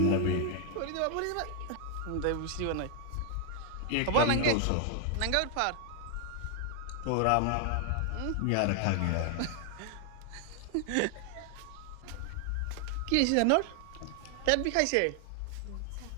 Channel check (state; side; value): different; both; correlation 0.00